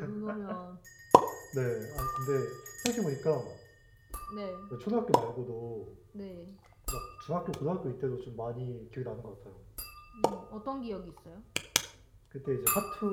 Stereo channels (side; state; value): both; identical; correlation 1.00